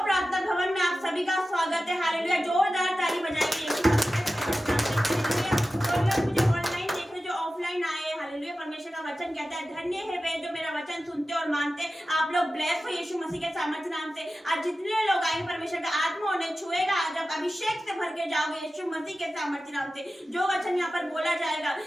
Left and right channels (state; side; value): normal; both; correlation 0.94